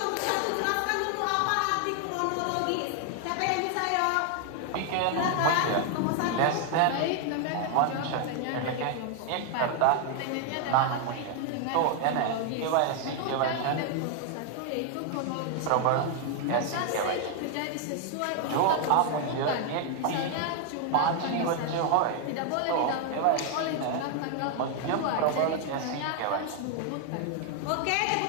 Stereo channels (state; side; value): different; both; correlation 0.00